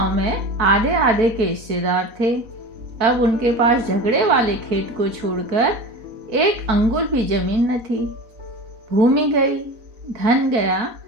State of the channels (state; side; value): late; left; 4.0 ms